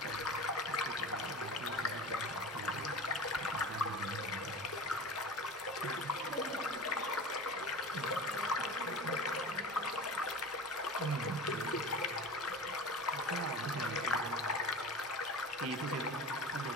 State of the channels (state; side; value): normal; both; correlation 0.33